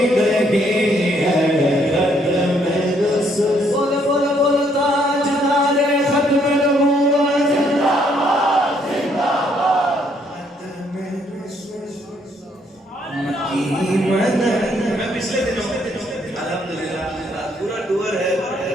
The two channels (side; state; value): both; normal; correlation 0.69